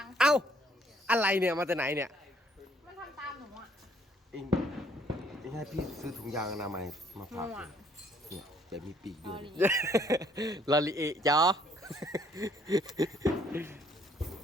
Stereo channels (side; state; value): both; normal; correlation 0.64